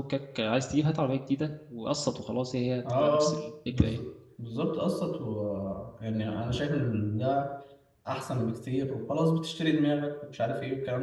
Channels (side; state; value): both; identical; correlation 1.00